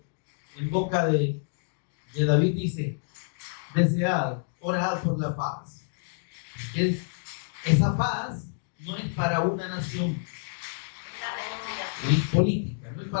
en boca de David dice: desead, orad por la paz. Esa paz no es para una nación política, no es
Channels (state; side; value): silent; right; digital silence